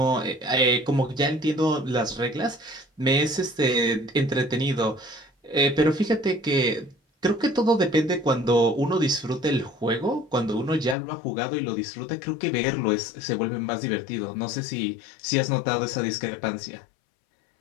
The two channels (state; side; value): drops out; right; at 11.0 s